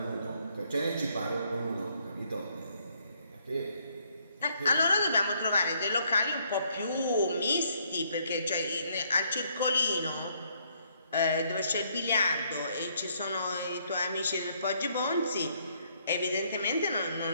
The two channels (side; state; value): both; inverted; correlation -0.69